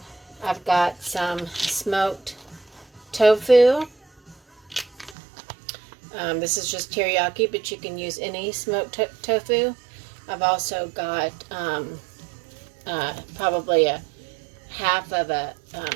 got some smoked tofu. This is just teriyaki, but you can use any smoked tofu. I've also got probably a half of a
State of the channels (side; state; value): left; drops out; at 5.2 s